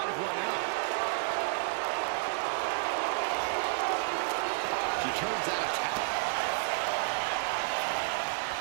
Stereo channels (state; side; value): silent; left; 57 dB below the other